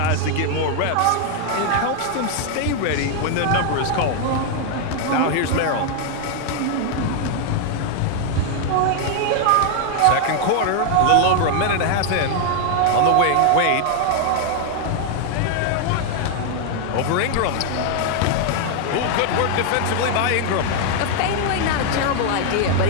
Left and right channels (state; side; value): different; both; correlation 0.00